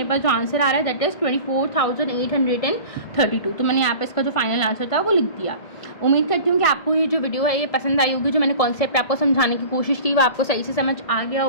पास जो आंसर आ रहा है दैट इज़ 24,832। तो मैंने यहाँ पे इसका जो फाइनल आंसर था वो लिख दिया। उम्मीद करती हूँ कि आपको ये जो वीडियो है ये पसंद आई होगी। जो मैंने कॉन्सेप्ट आपको समझाने की कोशिश की वो आपको सही से समझ आ गया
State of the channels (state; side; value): late; right; 1.7 ms